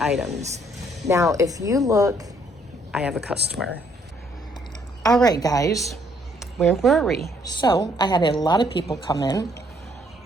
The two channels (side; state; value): both; normal; correlation 0.67